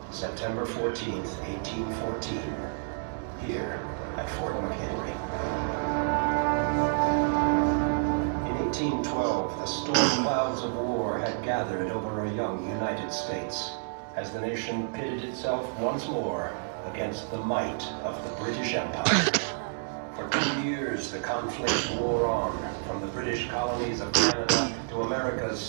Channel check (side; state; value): left; silent; digital silence